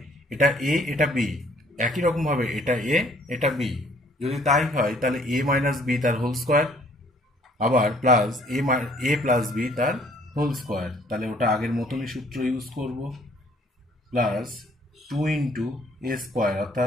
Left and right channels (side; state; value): both; normal; correlation 0.60